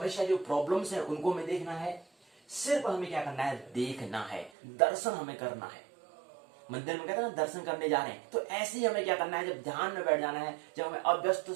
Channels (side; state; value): left; drops out; at 4.5 s